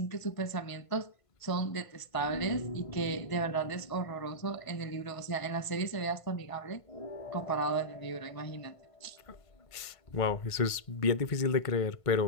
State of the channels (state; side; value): late; right; 1.5 ms